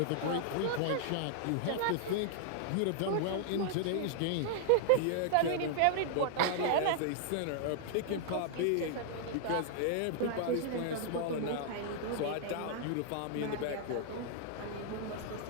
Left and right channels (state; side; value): different; both; correlation -0.01